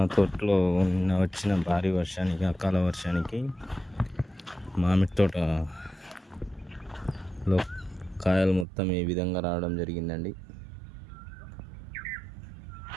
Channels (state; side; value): drops out; left; at 8.7 s